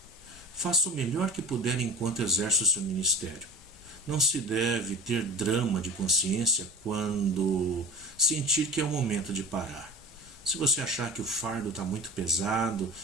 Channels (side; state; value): both; normal; correlation 0.36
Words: Faça o melhor que puder enquanto exerce o seu ministério. Não se deve ter drama de consciência quando sentir que é o momento de parar. Se você achar que o fardo está muito pesado,